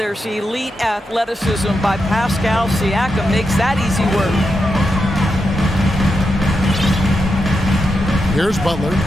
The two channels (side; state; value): both; normal; correlation 0.86